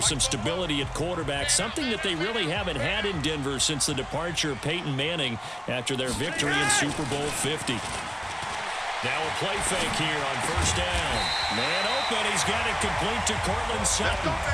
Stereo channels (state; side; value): identical; both; correlation 1.00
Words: stability at quarterback, something that they really haven't had in Denver since the departure of Peyton Manning after their victory in Super Bowl 50. Now a play fake here on first down. Man open. He's got it complete to Cortland Sutton.